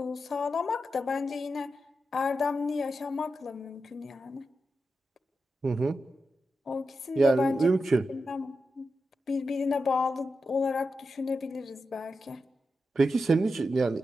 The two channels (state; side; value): normal; both; correlation 0.89